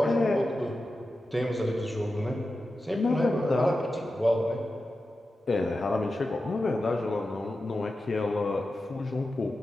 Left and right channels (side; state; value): both; normal; correlation 0.92